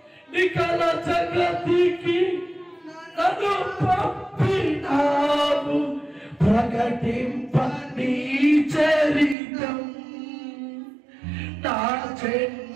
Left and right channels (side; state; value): left; drops out; at 9.3 s